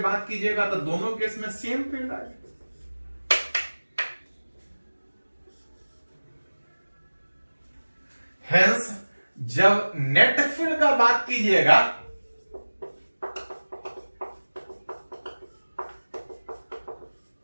कीजिएगा तो दोनों केस में सेम फील्ड आएगा। हेंस जब नेट फील्ड का बात कीजिएगा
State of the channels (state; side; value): inverted; both; correlation -1.00